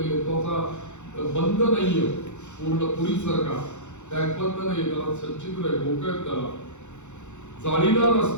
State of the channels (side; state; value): right; late; 0.83 ms